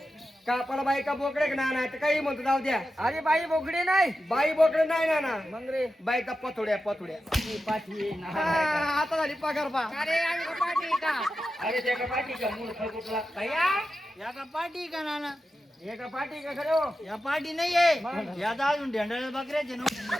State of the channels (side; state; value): both; normal; correlation 0.91